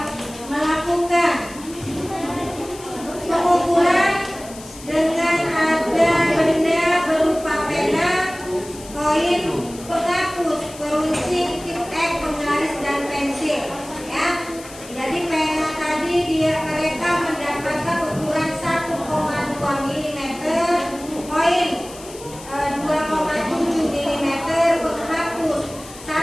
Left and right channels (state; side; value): noise; left; hiss, 17 dB below the sound